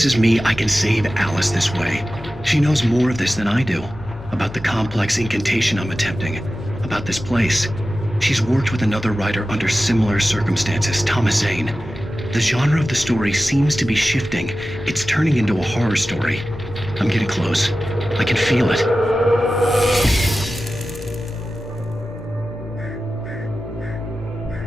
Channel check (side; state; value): both; normal; correlation 0.94